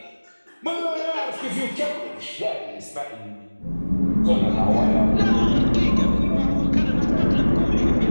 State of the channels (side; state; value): both; inverted; correlation -1.00